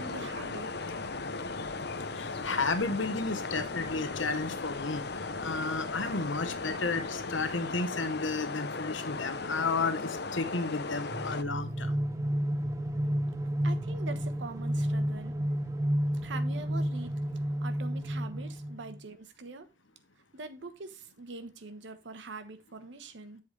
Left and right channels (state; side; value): normal; both; correlation 0.48